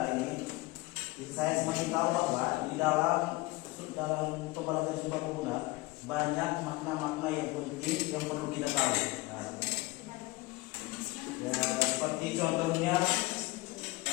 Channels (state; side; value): quieter; right; 21.6 dB